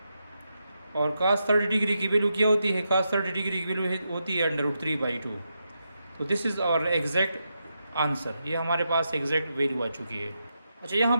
और cos 30 डिग्री की वैल्यू क्या होती है, cos 30 डिग्री की वैल्यू होती है √3/2। तो this is our exact answer, ये हमारे पास एग्जैक्ट वैल्यू आ चुकी है। अच्छा, यहाँ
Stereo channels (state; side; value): inverted; both; correlation -0.85